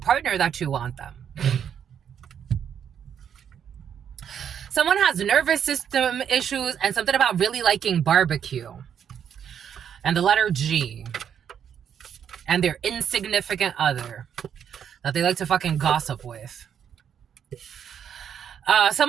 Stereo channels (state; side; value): quieter; left; 8.5 dB